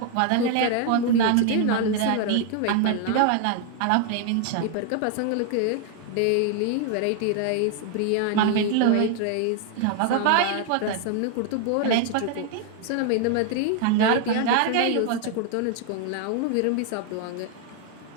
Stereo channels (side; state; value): both; different; correlation 0.00